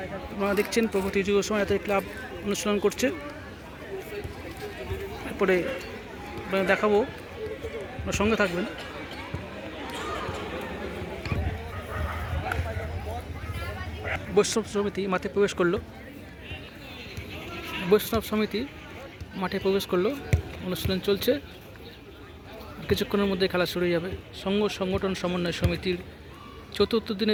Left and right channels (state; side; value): identical; both; correlation 1.00